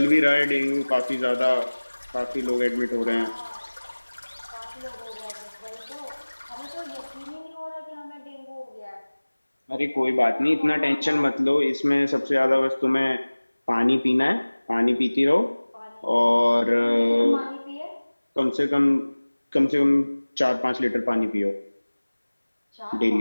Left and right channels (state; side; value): inverted; both; correlation -1.00